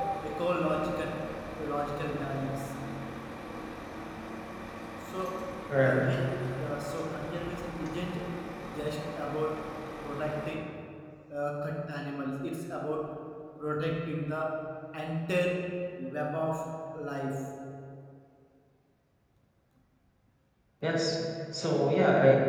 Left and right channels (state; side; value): identical; both; correlation 1.00